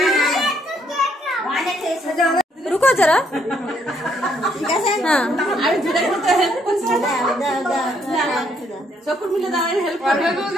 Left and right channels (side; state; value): both; normal; correlation 0.70